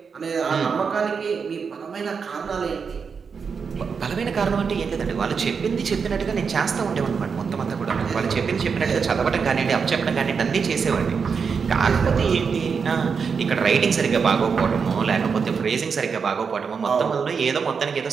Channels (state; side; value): quieter; left; 5.8 dB